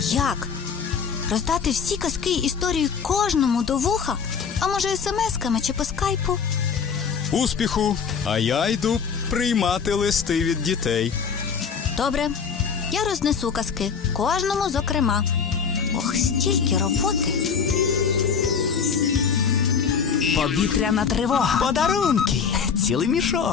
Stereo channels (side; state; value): right; quieter; 6.4 dB